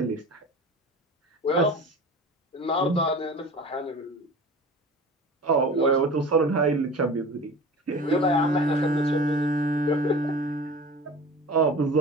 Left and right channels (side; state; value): both; normal; correlation 0.37